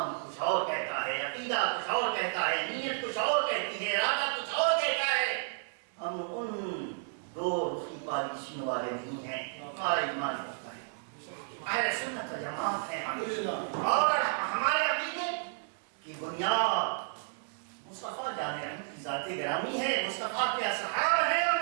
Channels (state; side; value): silent; left; digital silence